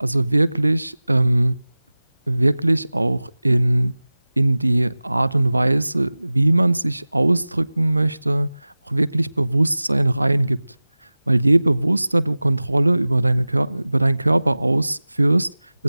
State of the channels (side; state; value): both; inverted; correlation -0.98